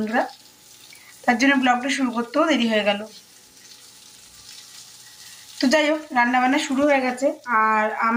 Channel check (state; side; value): identical; both; correlation 1.00